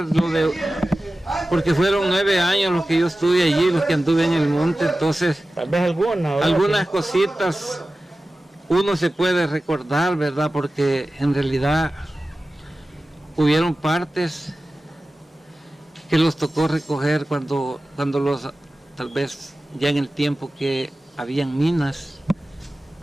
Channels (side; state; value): both; normal; correlation 0.95